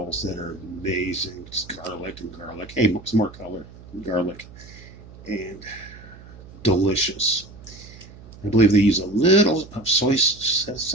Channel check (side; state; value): right; noise; hum, 19 dB below the sound